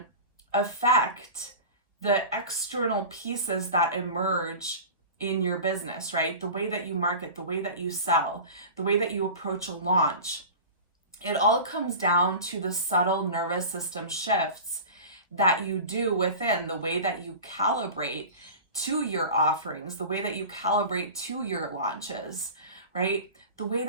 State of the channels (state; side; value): inverted; both; correlation -0.33